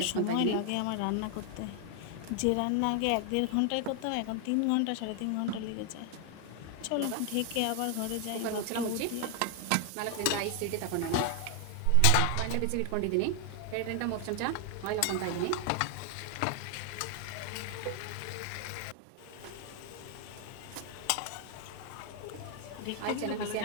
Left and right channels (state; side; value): different; both; correlation 0.00